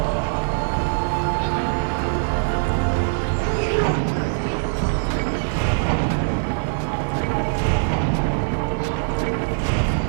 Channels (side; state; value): left; silent; digital silence